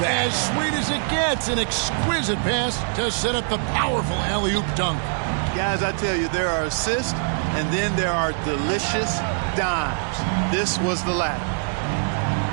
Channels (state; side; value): silent; left; digital silence